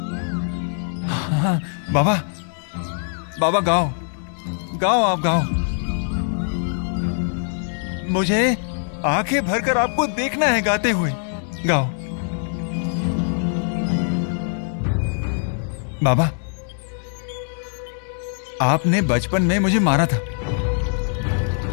हाँ, बाबा बाबा गाओ गाओ आप गाओ। मुझे आंखें भरकर आपको देखना है गाते हुए। गाओ बाबा। आपने बचपन में मुझे मारा था।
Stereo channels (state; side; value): silent; right; 64 dB below the other